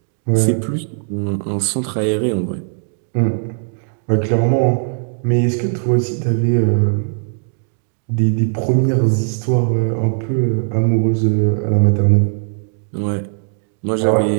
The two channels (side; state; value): left; silent; digital silence